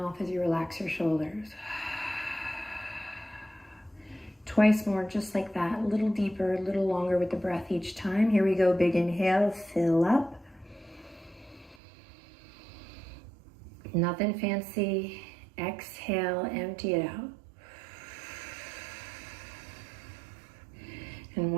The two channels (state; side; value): drops out; left; at 11.8 s